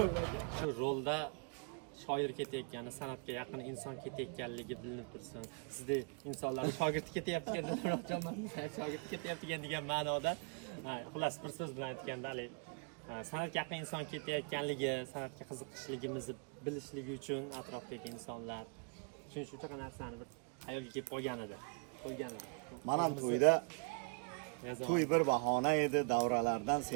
Shu rolda shoir ketayotgani, san'atga yaqin inson ketayotganligi bilinib tursin. Sizdek insonlar shogird ketyapti ekan, shogird ketyapti degan ma'noda, xullas bir so'z bilan aytganda, san'atga yaqin inson ketayotganligi, san'atga qiziqishligimizni bilishligi uchun atrofdagi insonlar shuning uchun shunaqa narsani bir hayolga kelib qolgan edi. Men ham to'yda to'y bir bahona edi, davralardan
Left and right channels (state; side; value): quieter; left; 35.2 dB